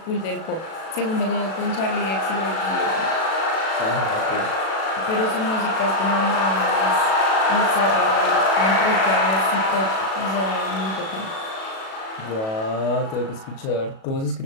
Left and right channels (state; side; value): late; right; 37 ms